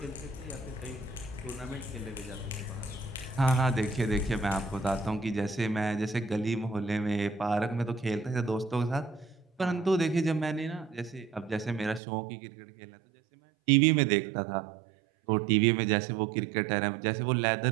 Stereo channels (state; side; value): drops out; left; at 12.0 s